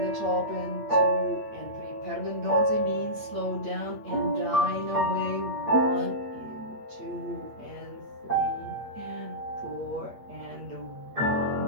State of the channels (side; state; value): left; late; 8.6 ms